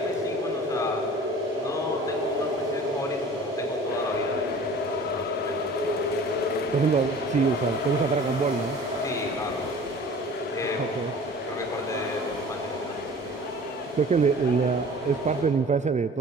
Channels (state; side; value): normal; both; correlation 0.44